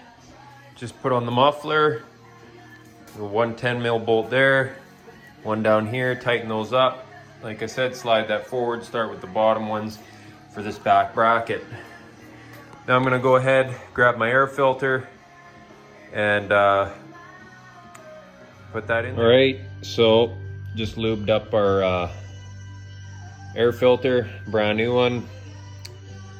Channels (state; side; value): identical; both; correlation 1.00